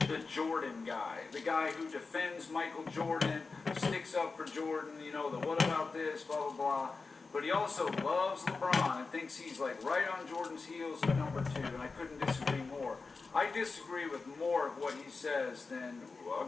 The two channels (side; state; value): right; quieter; 4.2 dB